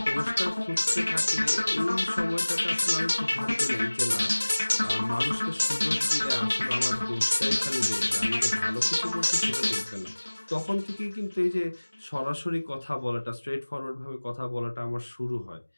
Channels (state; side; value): inverted; both; correlation -1.00